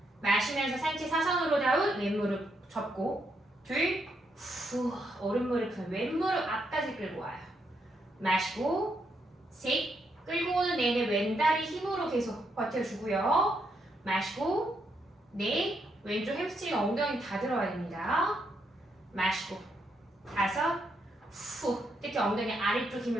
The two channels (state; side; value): normal; both; correlation 0.78